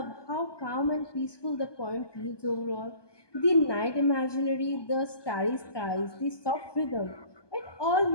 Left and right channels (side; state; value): right; late; 1.2 ms